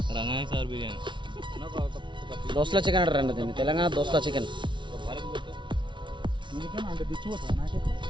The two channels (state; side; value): late; left; 0.24 ms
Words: రంగాయణ సార్ బిర్యానీ దోస్తుల చికెన్ అంటారండి దీన్ని తెలంగాణ దోస్తుల చికెన్ అంటే తెచ్చిపోతా నాకైతే